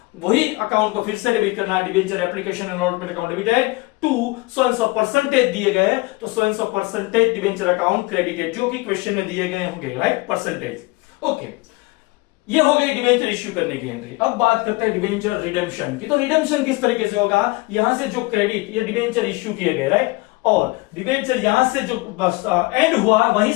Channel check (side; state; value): right; quieter; 23.3 dB